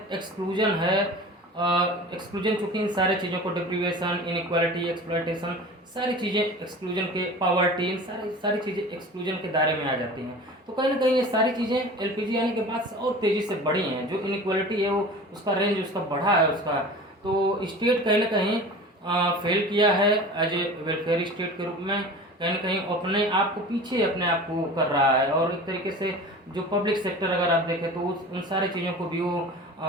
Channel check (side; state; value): both; normal; correlation 0.38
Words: एक्सक्लूजन है, एक्सक्लूजन चूँकि इन सारी चीज़ों को डिप्रीवेशन, इनइक्वालिटी, एक्सप्लॉयटेशन, सारी चीज़ें एक्सक्लूजन के, पॉवर्टी, इन सारी चीज़ें एक्सक्लूजन के दायरे में आ जाती हैं। तो कहीं ना कहीं ये सारी चीज़ें एलपीजी आने के बाद से और तेज़ी से बढ़ी हैं। जो इनइक्वालिटी है वो उसका रेंज उसका बढ़ा है उसका। तो स्टेट कहीं ना कहीं फेल किया है एज ए वेलफेयर स्टेट के रूप में, कहीं ना कहीं अपने आप को कर रहा है। और एक तरीके से जो पब्लिक सेक्टर अगर आप देखें, तो उन सारी चीज़ों को भी वो